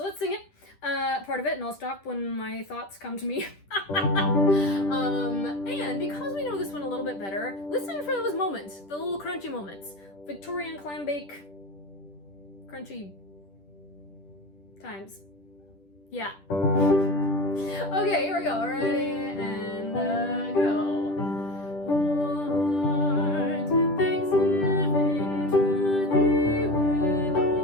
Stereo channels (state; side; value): late; right; 10 ms